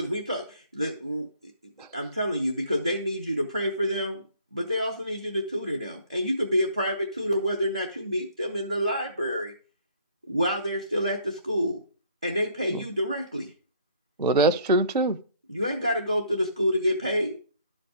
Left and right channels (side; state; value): both; inverted; correlation -0.60